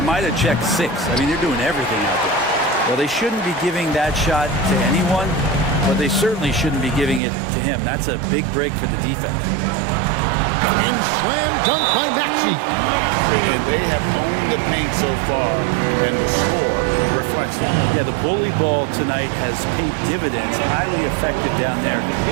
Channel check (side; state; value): left; drops out; at 7.2 s